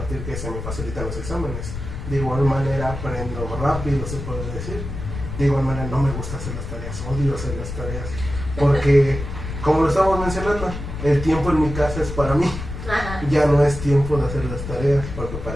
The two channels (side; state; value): left; noise; rumble, 7 dB below the sound